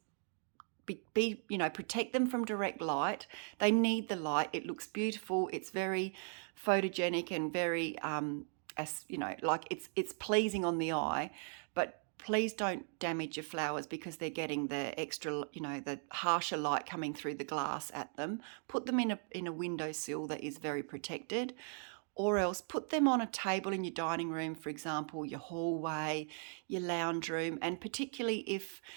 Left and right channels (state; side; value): silent; left; 52 dB below the other